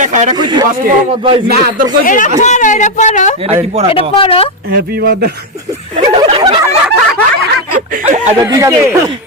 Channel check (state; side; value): normal; both; correlation 0.05